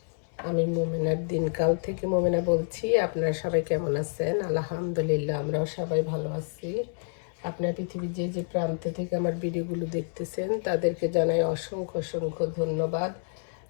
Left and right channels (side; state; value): right; silent; digital silence